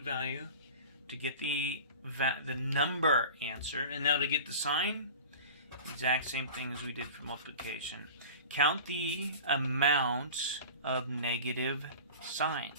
to get the number answer. And now to get the sign, exact same thing as we did for multiplication. Count the amount of negative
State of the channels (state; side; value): inverted; both; correlation -0.36